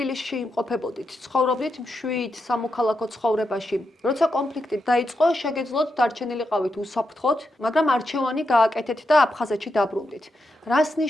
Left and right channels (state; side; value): normal; both; correlation 0.85